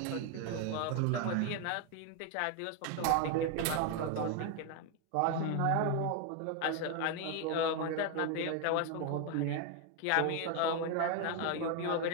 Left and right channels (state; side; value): different; both; correlation 0.01